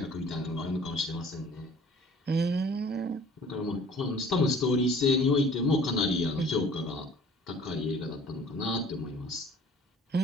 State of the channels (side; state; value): both; normal; correlation 0.51